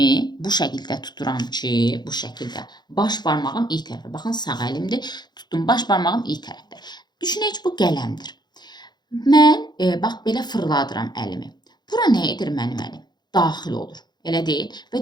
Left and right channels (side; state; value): right; late; 0.21 ms